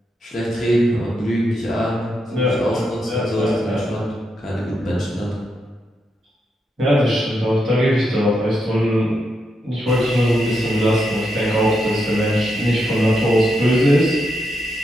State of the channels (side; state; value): both; normal; correlation 0.83